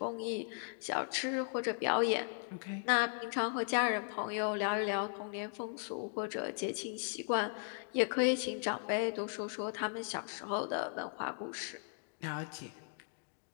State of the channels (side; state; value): right; silent; digital silence